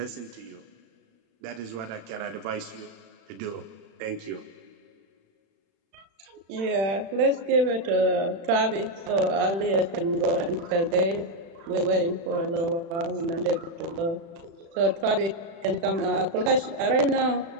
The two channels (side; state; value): left; late; 36 ms